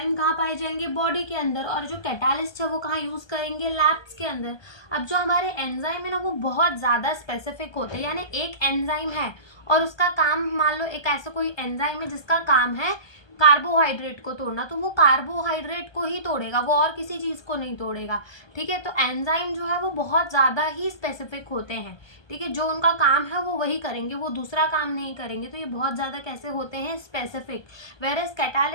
कहाँ पाए जाएंगे? बॉडी के अंदर। और जो कैटालिस्ट है वो कहाँ यूज करेंगे? लैब्स के अंदर। अब जो हमारे एंजाइम है ना, वो बहुत ज्यादा स्पेसिफिक होते हैं। यानी एक एंजाइम है और उसका काम, मान लो एक ऐसा कोई एंजाइम है जिसका काम है कार्बोहाइड्रेट को तोड़ना, तो वो कार्बोहाइड्रेट को ही तोड़ेगा, वो और किसी चीज को नहीं तोड़ेगा। ठीक है, तो एंजाइम जो है वो बहुत ज्यादा ही स्पेसिफिक होते हैं। ठीक है, जो उनका काम है वो वही करेंगे, वो दूसरा काम नहीं करेंगे। तो ये बहुत ज्यादा कैसे होते हैं? स्पेसिफिक। वेरेस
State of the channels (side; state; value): right; late; 1.2 ms